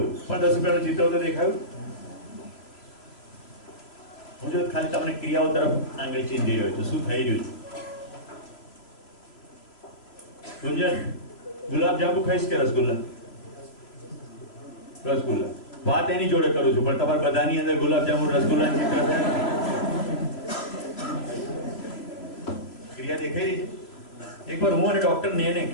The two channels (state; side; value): late; right; 3.0 ms